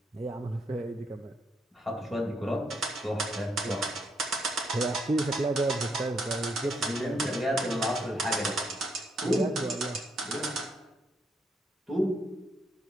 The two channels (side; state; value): both; normal; correlation 0.74